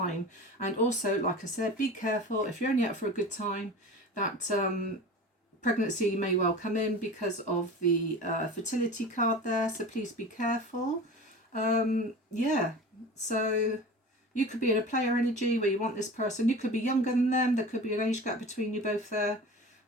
And also, like I said, be careful if you're only up for a good time, that pregnancy may well come in because of the fertility card there. So please be careful. Yeah, so you could be in a player energy where you want this person. You could be younger than them. There could be an age gap between you both there.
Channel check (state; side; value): normal; both; correlation 0.35